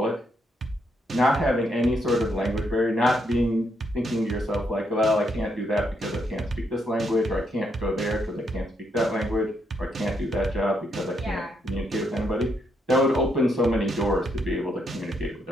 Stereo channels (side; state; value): both; normal; correlation 0.77